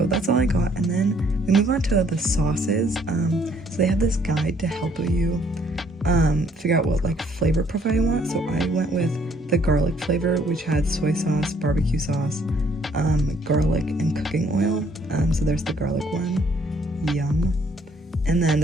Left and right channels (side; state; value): both; normal; correlation 0.64